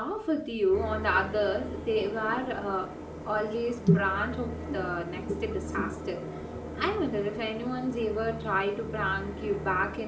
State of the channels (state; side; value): identical; both; correlation 1.00